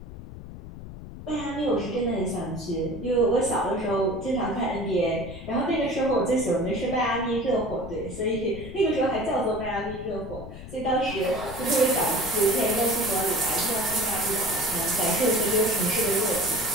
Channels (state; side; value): noise; left; rumble, 13 dB below the sound